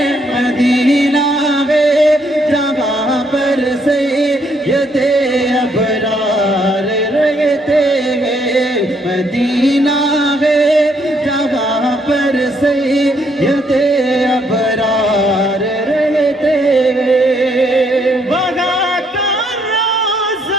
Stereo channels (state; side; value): normal; both; correlation 0.71